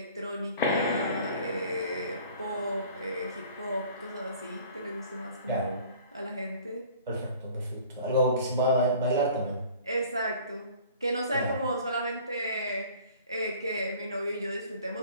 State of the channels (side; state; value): both; inverted; correlation -0.49